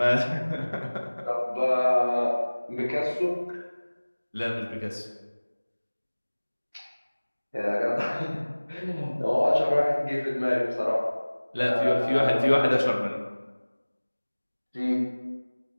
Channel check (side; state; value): both; inverted; correlation -1.00